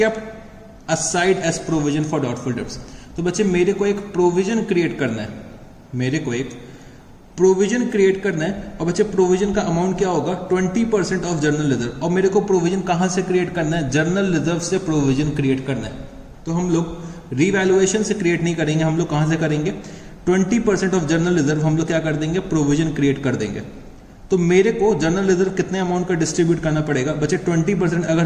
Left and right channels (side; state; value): both; identical; correlation 1.00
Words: aside as provision for doubtful debts. तो बच्चे मेरे को एक प्रोविजन क्रिएट करना है, मेरे को एक प्रोविजन क्रिएट करना है। और बच्चे प्रोविजन का अमाउंट क्या होगा? 20% ऑफ जर्नल रिजर्व। और मेरे को प्रोविजन कहां से क्रिएट करना है? जर्नल रिजर्व से प्रोविजन क्रिएट करना है। तो हम लोग रीवैल्यूएशन से क्रिएट नहीं करेंगे, हम लोग कहां से करेंगे? 20% ऑफ जर्नल रिजर्व हम लोग क्या कर देंगे? प्रोविजन क्रिएट कर देंगे। तो मेरे को जर्नल रिजर्व कितने अमाउंट का डिस्ट्रीब्यूट करना पड़ेगा? बच्चे 20%